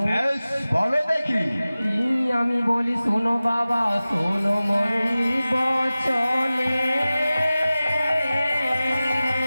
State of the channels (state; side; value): inverted; both; correlation -0.97